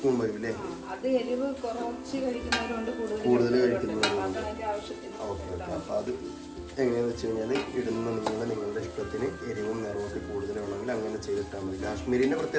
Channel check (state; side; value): identical; both; correlation 1.00